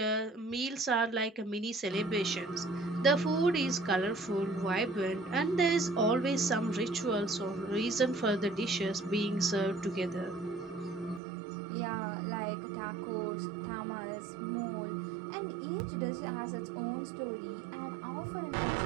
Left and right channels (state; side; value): drops out; left; at 11.2 s